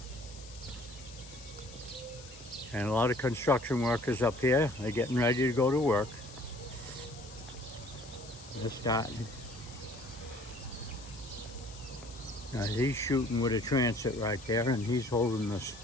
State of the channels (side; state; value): left; noise; hiss, 18 dB below the sound